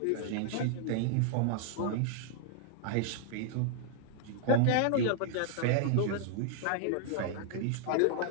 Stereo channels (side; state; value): both; different; correlation -0.01